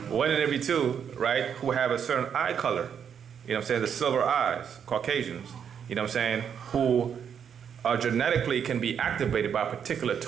One in every two, right, who have a certain eye color, the silver eyes, Caucasians, who genetically can be activated by a particular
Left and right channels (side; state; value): left; quieter; 7.8 dB